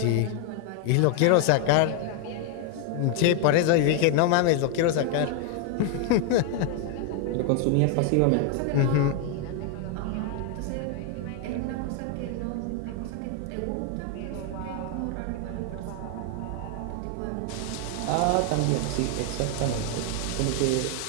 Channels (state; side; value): different; both; correlation 0.00